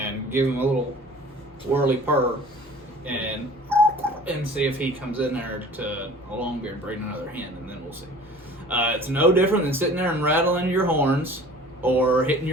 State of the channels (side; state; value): both; normal; correlation 0.46